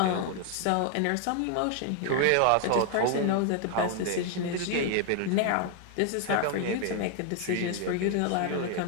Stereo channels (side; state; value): both; different; correlation 0.00